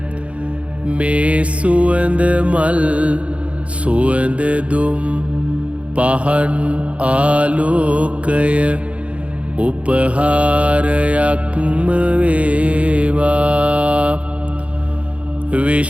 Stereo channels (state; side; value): late; left; 0.063 ms